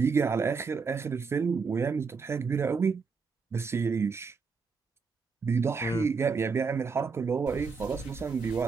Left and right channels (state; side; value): quieter; left; 5.1 dB